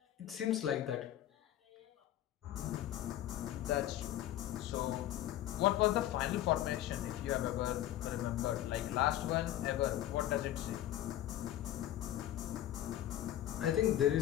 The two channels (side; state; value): right; quieter; 13.0 dB